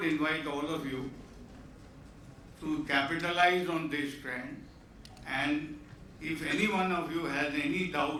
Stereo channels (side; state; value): both; identical; correlation 1.00